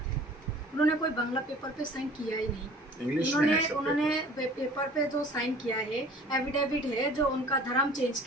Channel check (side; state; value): both; normal; correlation 0.48